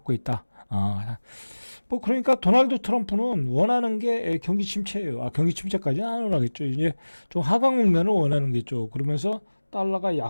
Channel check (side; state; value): both; inverted; correlation -1.00